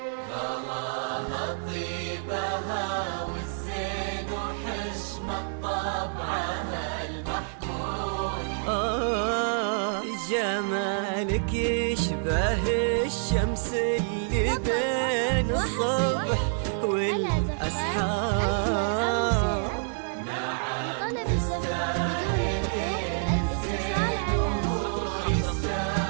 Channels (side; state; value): left; silent; 60 dB below the other